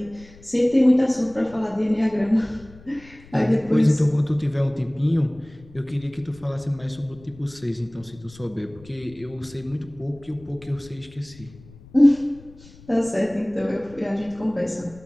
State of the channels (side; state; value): left; noise; rumble, 22 dB below the sound